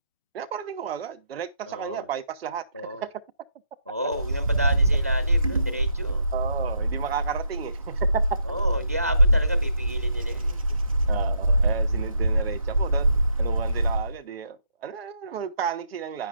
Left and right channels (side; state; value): both; inverted; correlation -0.76